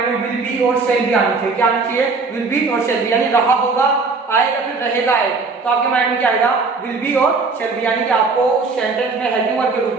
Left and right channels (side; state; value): left; quieter; 4.2 dB